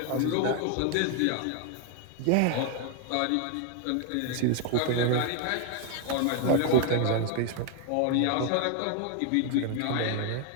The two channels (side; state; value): both; different; correlation 0.01